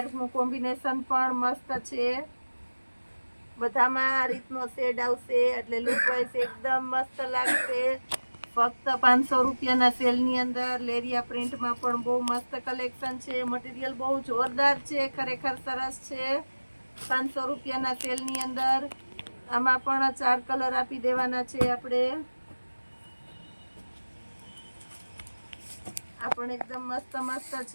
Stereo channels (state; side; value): inverted; both; correlation -1.00